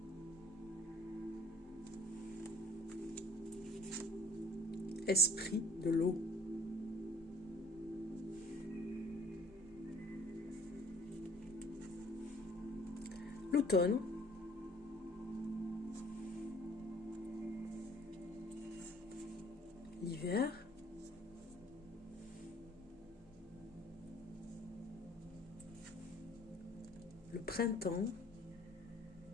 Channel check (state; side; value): normal; both; correlation 0.54